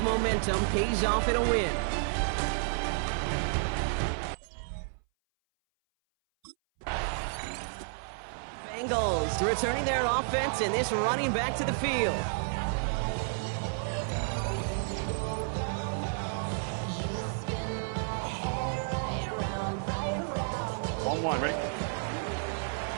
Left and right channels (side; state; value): left; silent; 57 dB below the other